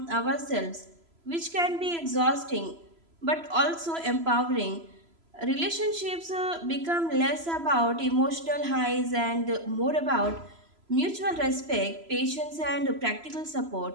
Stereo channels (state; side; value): late; left; 3.0 ms